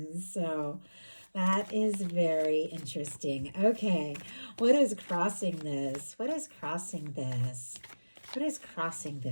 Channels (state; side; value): inverted; both; correlation -1.00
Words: so that is very interesting. Okay, what is crossing this? What is crossing this? What is crossing